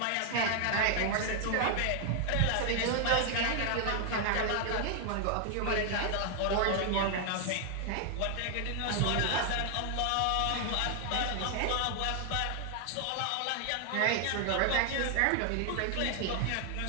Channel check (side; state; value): both; different; correlation 0.00